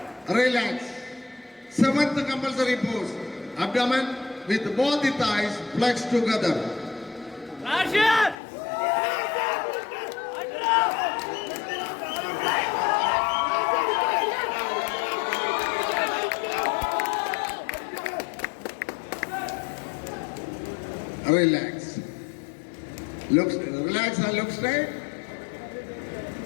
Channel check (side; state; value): right; drops out; at 8.3 s